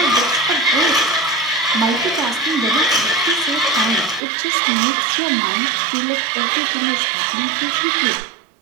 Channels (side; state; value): left; drops out; at 4.2 s